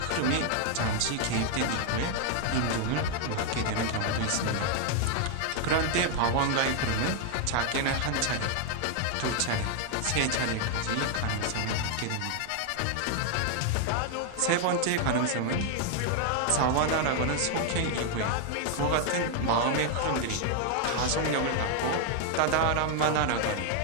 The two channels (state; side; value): different; both; correlation 0.00